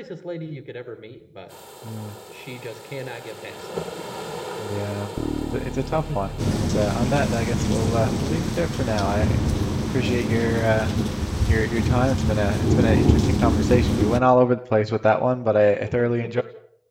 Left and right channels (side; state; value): both; identical; correlation 1.00